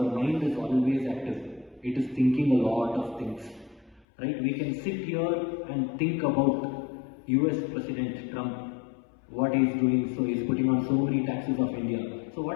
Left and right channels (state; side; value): drops out; right; at 4.0 s